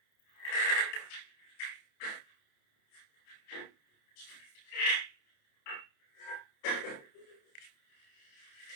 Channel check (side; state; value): right; late; 28 ms